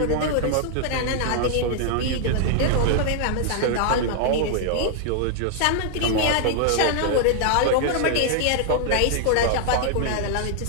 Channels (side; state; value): both; different; correlation -0.01